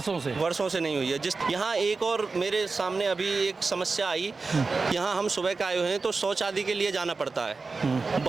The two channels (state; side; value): quieter; left; 4.1 dB